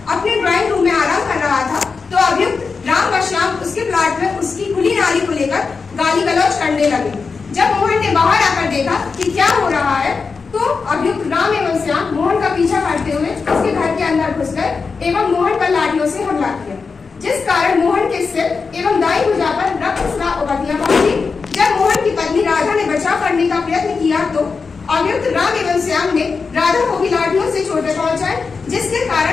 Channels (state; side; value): quieter; right; 4.9 dB